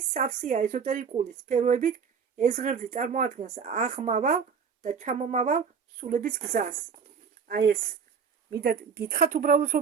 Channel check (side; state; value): left; quieter; 6.3 dB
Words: სავსეა ეზოტერიკული სფეროებით. ეს ღერძი წარმოადგენს აღმავალ და ჩამომავალ სულების გზას. აი ეს მინდა გითხრათ უბრალოდ